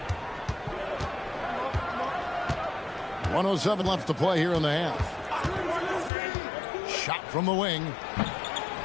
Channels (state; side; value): drops out; right; at 6.1 s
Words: 1:07 left to play here in the half. Shot from the wing.